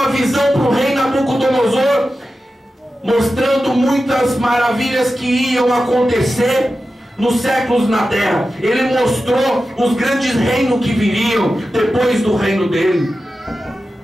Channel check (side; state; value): both; normal; correlation 0.92